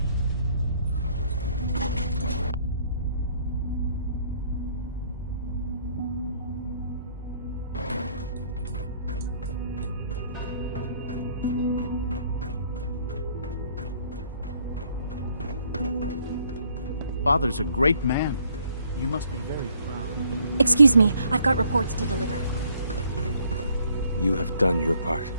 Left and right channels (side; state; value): both; inverted; correlation -0.64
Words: Father's a great man. You must be very proud. Excuse me, I've got reports to deliver. You have done your part,